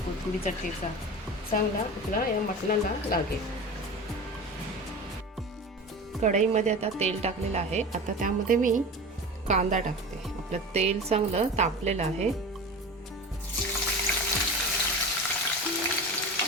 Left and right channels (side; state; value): both; normal; correlation 0.31